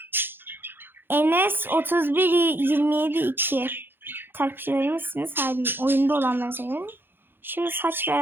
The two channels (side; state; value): left; late; 0.10 ms